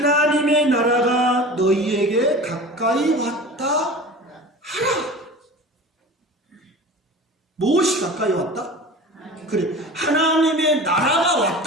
나라가 너희에게 가까이 왔다 하라. 무엇이 가까이 왔다? 그래, 하나님의 나라가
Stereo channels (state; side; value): normal; both; correlation 0.36